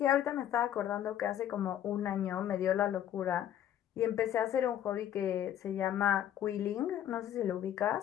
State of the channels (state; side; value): quieter; right; 10.9 dB